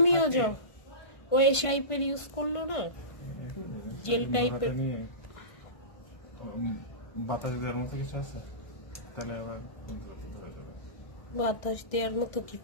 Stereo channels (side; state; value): right; late; 1.5 ms